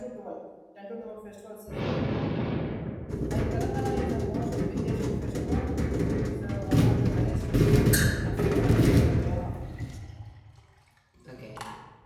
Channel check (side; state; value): both; identical; correlation 1.00